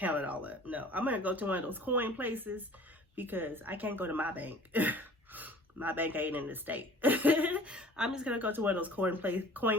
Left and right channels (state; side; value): normal; both; correlation 0.48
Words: it all up. No, I'm going to go to one of those coin places because I can't go to my bank. My bank ain't in the state. I'm just going to go to one of those coin